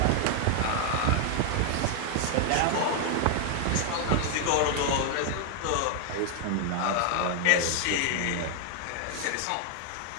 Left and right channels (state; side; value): different; both; correlation 0.00